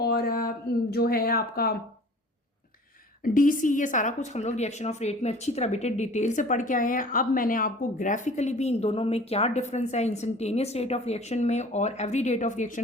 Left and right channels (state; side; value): normal; both; correlation 0.46